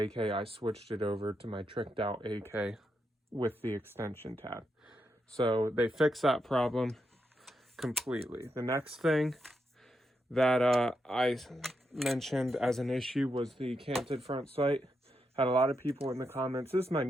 I switched it over to my tricked out AK with the extension tab. So they fixed that problem completely. The next thing that I mentioned as an issue was the canted front sight. Had a lot of people in the comments. This is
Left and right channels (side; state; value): both; normal; correlation 0.83